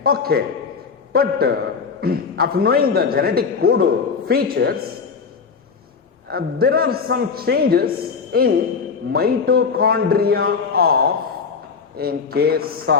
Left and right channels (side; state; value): right; quieter; 5.5 dB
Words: Okay, but after knowing the genetic code features, there are some changes in mitochondria in case